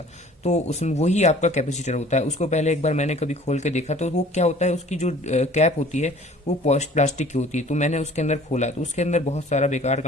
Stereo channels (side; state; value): both; normal; correlation 0.50